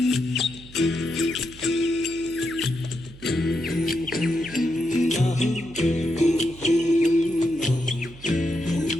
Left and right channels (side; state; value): right; noise; hum, 19 dB below the sound